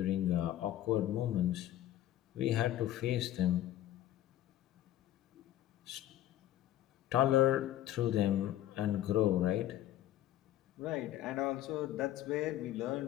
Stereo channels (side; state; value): right; quieter; 13.0 dB